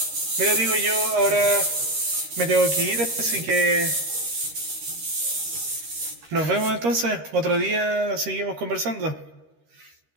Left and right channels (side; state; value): left; late; 13 ms